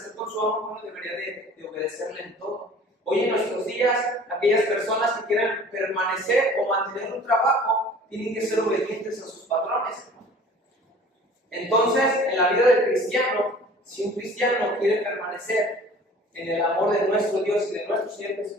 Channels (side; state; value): both; normal; correlation 0.47